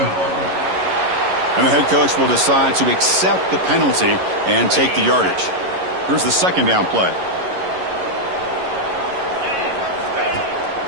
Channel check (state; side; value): late; left; 11 ms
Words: And the head coach will decide to accept the penalty and take the yardage. Here's the second down play.